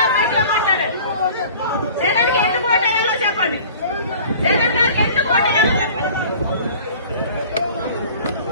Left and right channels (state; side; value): inverted; both; correlation -0.46